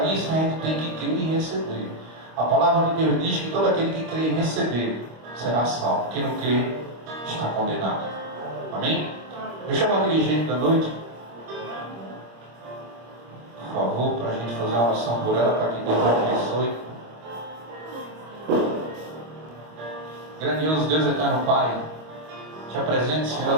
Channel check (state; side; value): late; left; 25 ms